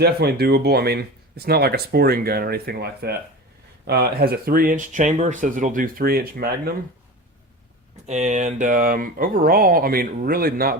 doable. I mean, it's not like a sporting gun or anything like that. It has a 3-inch chamber, says it'll do 3-inch Magnum. And overall, I mean, really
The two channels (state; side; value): normal; both; correlation 0.31